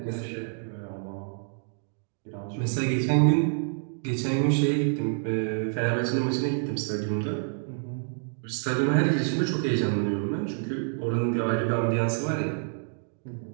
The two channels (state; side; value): silent; left; digital silence